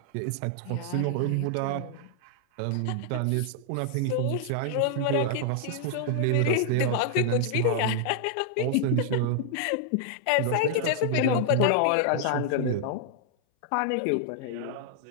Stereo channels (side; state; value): both; different; correlation 0.00